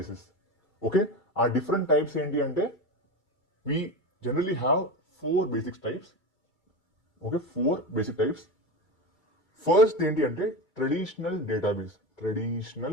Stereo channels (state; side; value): late; right; 2.3 ms